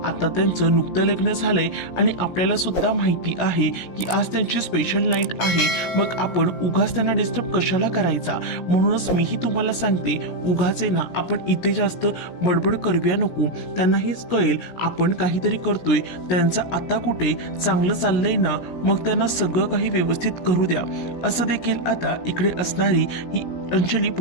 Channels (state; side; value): late; right; 17 ms